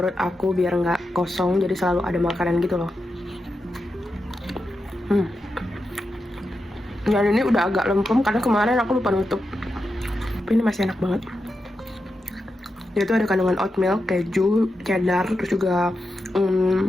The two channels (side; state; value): both; normal; correlation 0.88